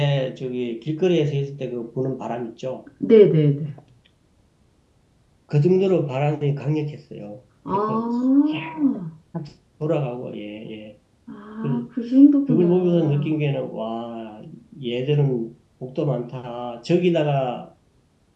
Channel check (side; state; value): both; identical; correlation 1.00